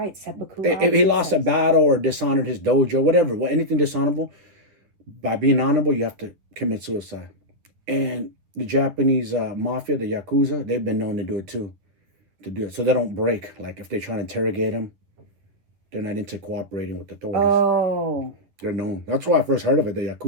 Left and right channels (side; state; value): left; late; 10 ms